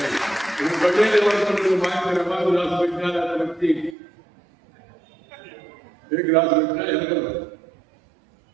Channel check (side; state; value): left; drops out; at 4.0 s